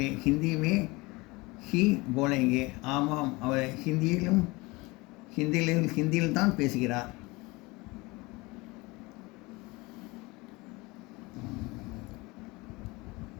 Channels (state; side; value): quieter; right; 23.6 dB